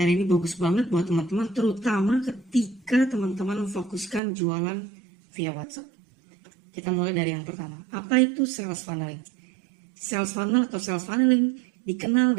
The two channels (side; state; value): left; drops out; at 4.2 s